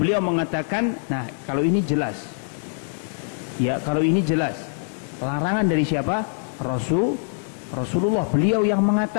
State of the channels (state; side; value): silent; right; 63 dB below the other